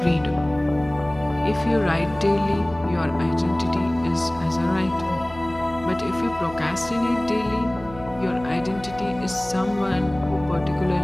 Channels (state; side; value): noise; right; hum, 17 dB below the sound